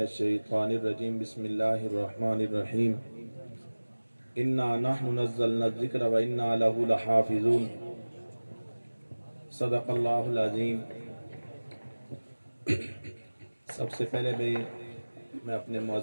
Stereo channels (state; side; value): inverted; both; correlation -1.00